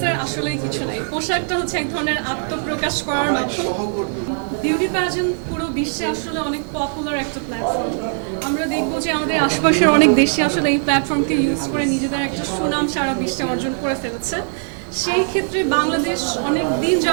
আসলেই কিছু নাই। পোশাকটা হচ্ছে এক ধরনের আত্মপ্রকাশ করার মাধ্যম। বিউটি প্যাজেন্ট পুরো বিশ্বে আসলে অনেক পপুলার একটা প্ল্যাটফর্ম। আমরা দেখব যে আমাদের আশপাশের অনেক দেশে আসলে এই প্ল্যাটফর্মকে ইউজ করে নিজেদের একটা সুনাম সারা বিশ্বে অর্জন করে ফেলেছে। সেই ক্ষেত্রে বাংলাদেশ অনেক দিন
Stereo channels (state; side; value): silent; left; 60 dB below the other